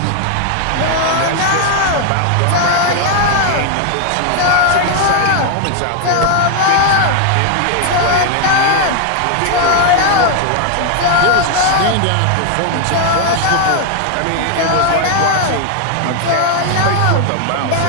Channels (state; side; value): different; both; correlation 0.00